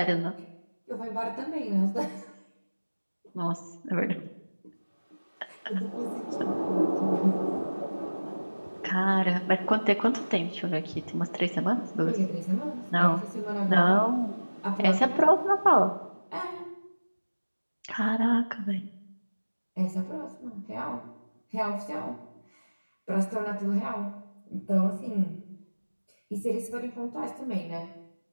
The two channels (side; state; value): both; inverted; correlation -1.00